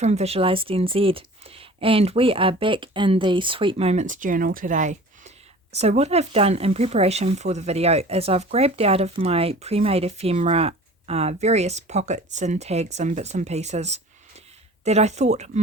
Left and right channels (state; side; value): normal; both; correlation 0.43